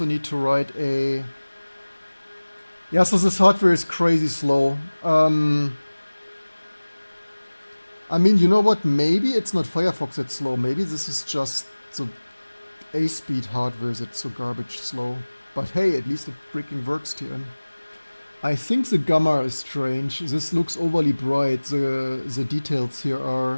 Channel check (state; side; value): inverted; both; correlation -1.00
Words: need to write a... Yeah, so this hardware is crazy slow. I mean, you know what? Maybe it's not Firefox that's slow. Maybe this is just the A-speed hardware that's so garbage slow. But hey, at least it freaking works, TN. I think the gamma is strange. This looks overly bright. The details here are